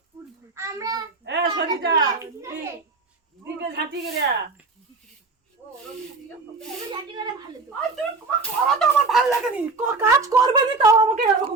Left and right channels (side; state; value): left; quieter; 3.9 dB